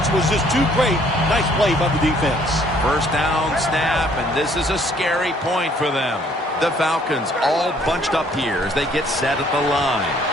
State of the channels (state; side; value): normal; both; correlation 0.62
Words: was just too great. Nice play by the defense. First down snap, and this is a scary point for them. The Falcons all bunched up here as they get set at the line.